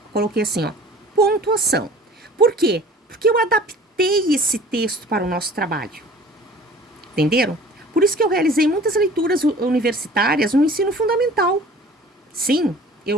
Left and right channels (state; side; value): normal; both; correlation 0.47